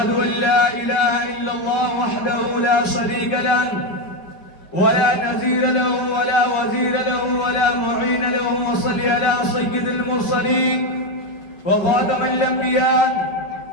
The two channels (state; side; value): late; right; 5.4 ms